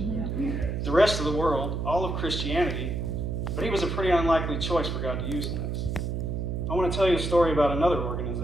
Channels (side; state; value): right; noise; hum, 2 dB below the sound